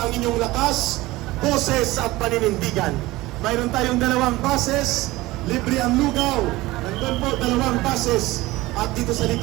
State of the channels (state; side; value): quieter; left; 19.2 dB